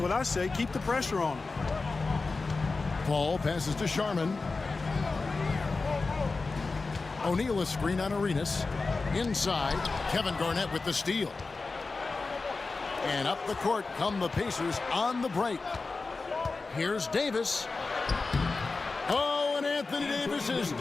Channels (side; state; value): right; quieter; 3.9 dB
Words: I say. Keep the pressure on him. Paul passes to Sharman. O'Neal a screen on Arenas. Inside, Kevin Garnett with the steal. And up the court come the Pacers on the break. Here's Davis. Oh, and Anthony Davis